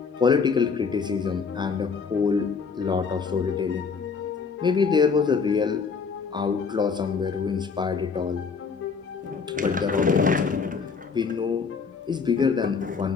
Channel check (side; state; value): right; quieter; 5.5 dB